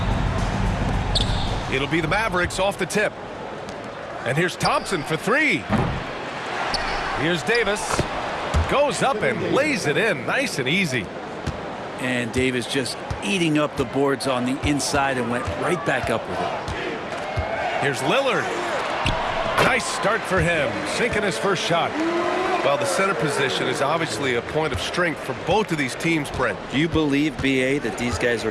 It'll be the Mavericks off the tip. And here's Thompson for three. Here's Davis. Goes up and lays it in nice and easy. And Davis just eating up the boards on the inside and went right back up with it. Here's Lillard. Nice start for him, sinking his first shot. Well, the center position is obviously a point of strength for both of these teams, Brent. Do you believe, B.A., that these guys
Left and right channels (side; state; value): both; identical; correlation 1.00